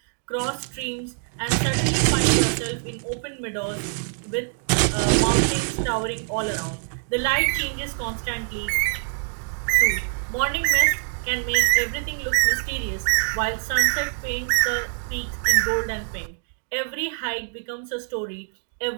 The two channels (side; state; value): left; silent; 62 dB below the other